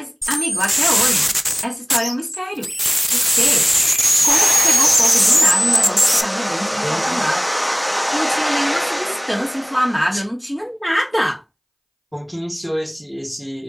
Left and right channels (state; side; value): identical; both; correlation 1.00